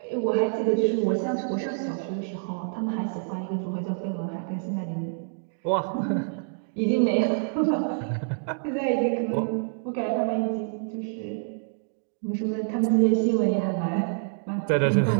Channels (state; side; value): silent; left; digital silence